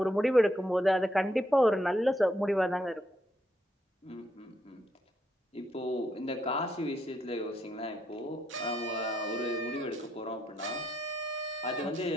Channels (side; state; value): both; normal; correlation 0.77